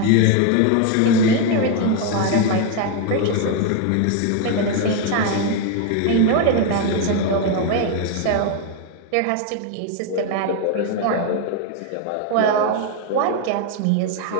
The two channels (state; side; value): different; both; correlation 0.01